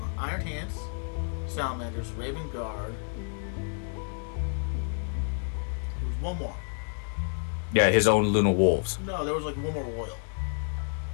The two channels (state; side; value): silent; right; 58 dB below the other